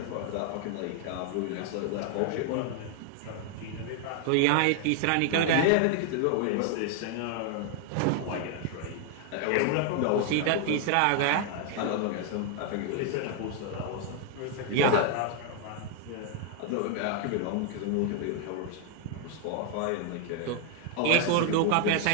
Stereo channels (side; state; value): both; different; correlation 0.00